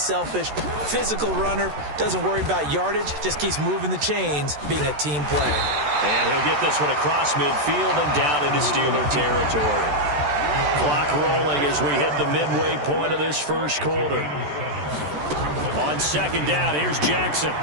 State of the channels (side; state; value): left; late; 14 ms